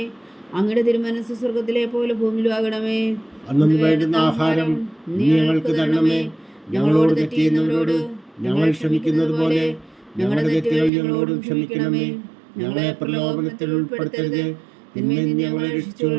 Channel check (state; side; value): drops out; left; at 10.9 s